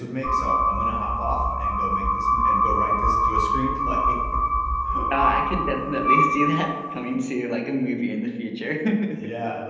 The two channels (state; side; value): identical; both; correlation 1.00